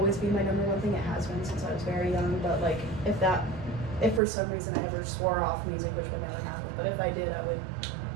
be my number one thing. It has been since I was very young. But like if for some reason I ever swore off music, which would never happen, but if I did, I would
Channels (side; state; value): left; drops out; at 4.2 s